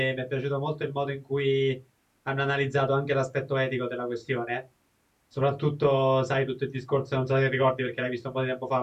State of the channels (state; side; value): identical; both; correlation 1.00